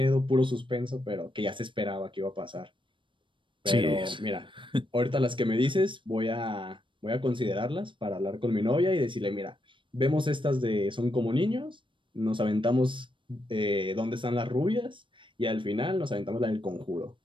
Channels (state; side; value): late; left; 0.24 ms